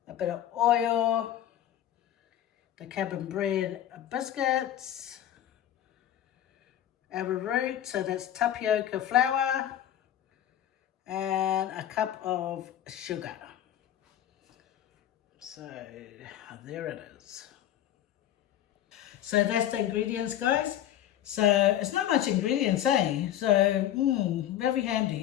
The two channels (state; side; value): quieter; right; 11.5 dB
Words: a bit of oil, the cabin bread biscuits, arrowroot, so that's tapioca flour, and a cup of sugar. So there it is. So that's the ingredients, guys. So it's not much ingredients, eh? So very